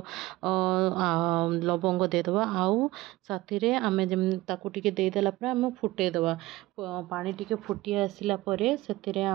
लवंग देदेबा। आउ साथी रे आमे ताकू टिके देदेला परे आमे फुटेदेबा। पानी टिके फुटी आसिला परे सेतिरे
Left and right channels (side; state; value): left; quieter; 18.6 dB